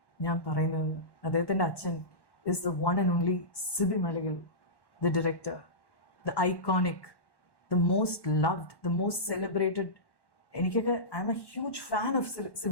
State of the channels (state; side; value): late; right; 1.1 ms